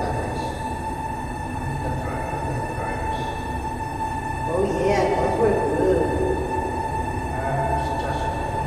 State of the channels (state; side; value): identical; both; correlation 1.00